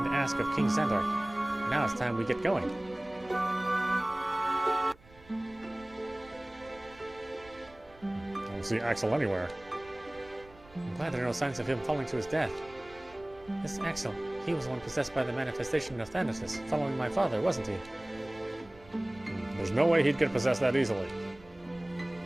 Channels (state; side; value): noise; right; rumble, 24 dB below the sound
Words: to ask of King Xandar. Now it's time we get going. I don't see Axel anywhere. I'm glad there are no signs of him falling to his death. This Axel, he was the one possessed by the manifestation of Thanatos, following my father, wasn't he? There's no way he'd get possessed that easily.